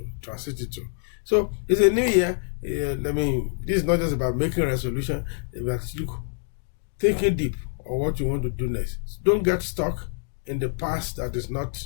to. So it's a new year. This is not just about making a resolution, but thinking deep on what you want to do next. So don't get stuck in the past that is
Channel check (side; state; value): right; silent; digital silence